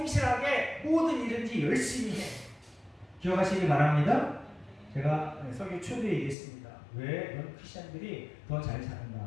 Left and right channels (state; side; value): drops out; right; at 6.4 s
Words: 모든 일든지 열심히 해. 기억하시기 바랍니다. 제가 설교 초대에 얘기했습니다. 왜 넌 크리스찬들이 더 잘